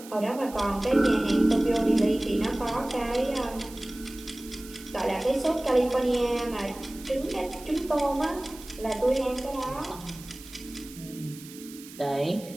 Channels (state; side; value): noise; right; hiss, 17 dB below the sound